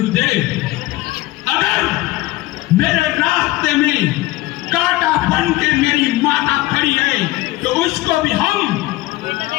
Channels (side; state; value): right; quieter; 18.2 dB